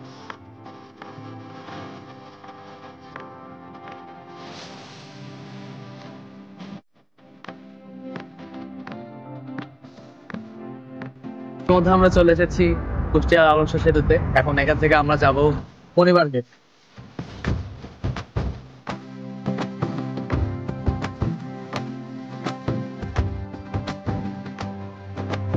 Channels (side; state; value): both; identical; correlation 1.00